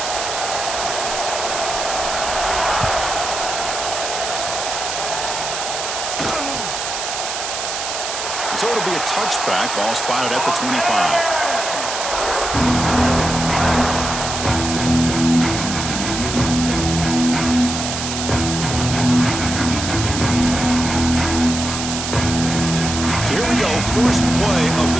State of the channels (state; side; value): noise; right; hiss, 4 dB below the sound